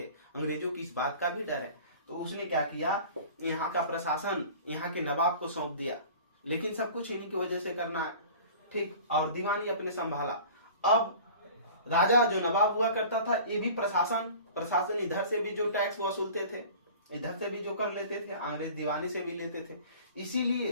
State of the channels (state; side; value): inverted; both; correlation -0.43